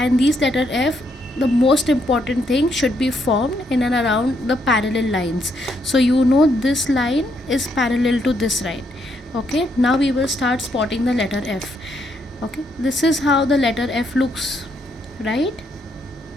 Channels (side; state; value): both; normal; correlation 0.75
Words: these letter F, the most important thing, should be formed in and around the parallel lines. So you know this line is parallel to this line. Okay, now we will start spotting the letter F. Okay, this is how the letter F looks, right?